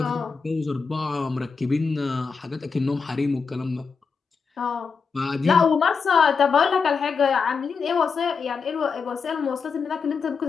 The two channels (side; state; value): right; quieter; 5.3 dB